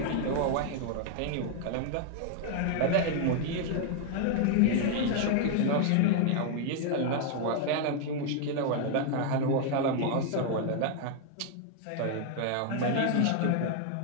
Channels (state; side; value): different; both; correlation 0.00